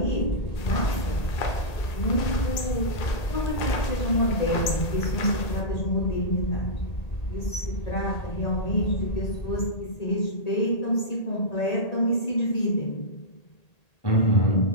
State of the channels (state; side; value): late; right; 1.8 ms